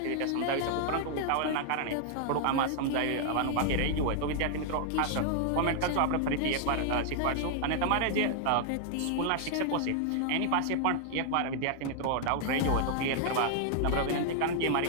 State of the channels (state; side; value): different; both; correlation 0.00